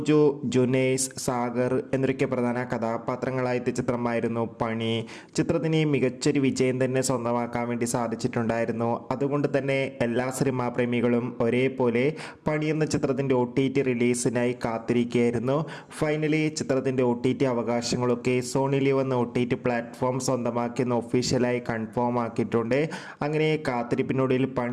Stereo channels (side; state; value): both; identical; correlation 1.00